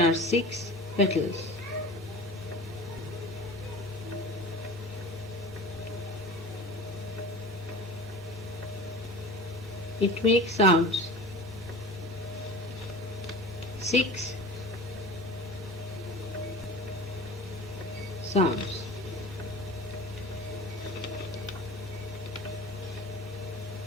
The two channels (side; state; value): both; normal; correlation 0.37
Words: are 6 petals, it makes sounds 6 sounds.